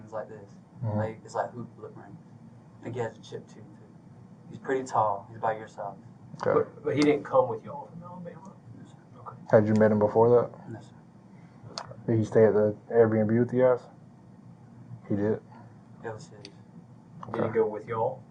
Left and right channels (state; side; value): identical; both; correlation 1.00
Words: like this. Mhm. Like it's like hoop lip rings. I think he has a chip tooth too. He's pretty tall. He's about your size. Okay. But he didn't come with y'all from Alabama. No, sir. Okay. Had you met him before that? No, sir. Did he stay at the Airbnb with you guys? He did? It was his. Did he go with y'all?